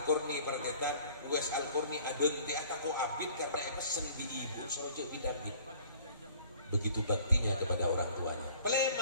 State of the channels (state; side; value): inverted; both; correlation -0.52